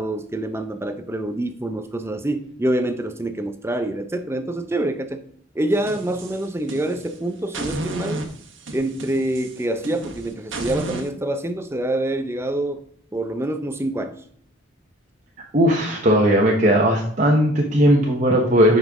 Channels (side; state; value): both; normal; correlation 0.57